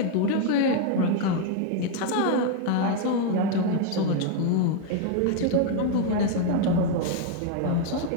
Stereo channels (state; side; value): different; both; correlation 0.00